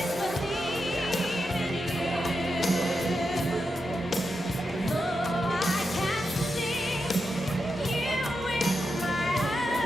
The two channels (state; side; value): normal; both; correlation 0.87